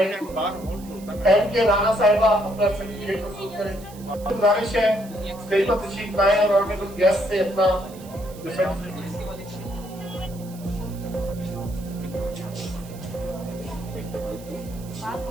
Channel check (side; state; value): right; noise; hiss, 21 dB below the sound